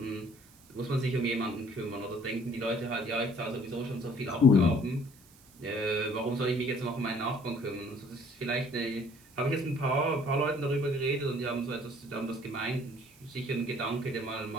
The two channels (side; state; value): right; noise; hiss, 26 dB below the sound